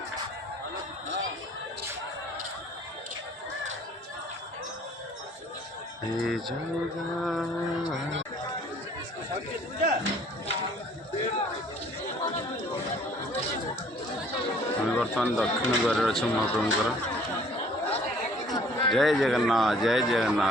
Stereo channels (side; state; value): both; normal; correlation 0.56